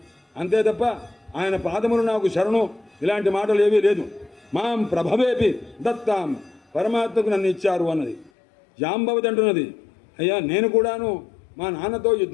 అంతే తప్ప ఆయన పాదములు నాకు శరణు ఇలాంటి మాటలు ఏవీ లేదు. మాం ప్రభవేపి దత్తాం, పరమాత్మకు నన్ను ఇచ్చారు అన్నది. జాంబవతి అంటున్నది, అయ్యా నేను కూడాను మా నాన్నతో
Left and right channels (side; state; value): right; drops out; at 8.3 s